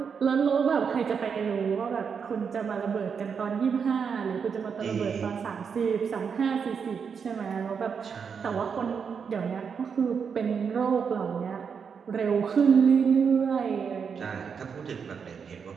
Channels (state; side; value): quieter; left; 6.4 dB